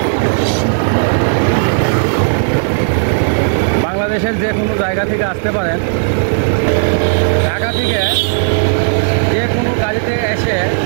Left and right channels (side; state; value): left; silent; digital silence